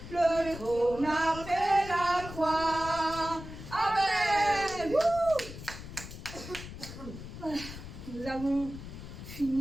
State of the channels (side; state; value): left; noise; rumble, 12 dB below the sound